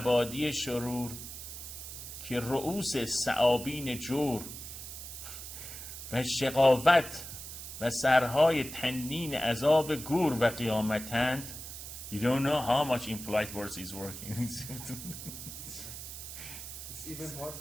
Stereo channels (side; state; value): right; noise; hiss, 10 dB below the sound